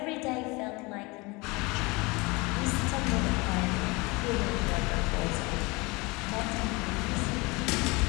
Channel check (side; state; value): right; quieter; 25.5 dB